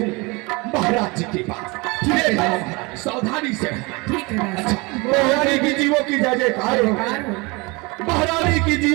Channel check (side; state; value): left; quieter; 26.1 dB